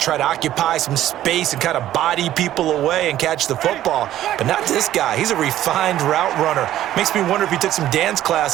to occupy some space and kind of body people away and catch the football. But not this guy. He's a refined route runner. Makes me wonder if he took some dance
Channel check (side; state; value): left; quieter; 12.9 dB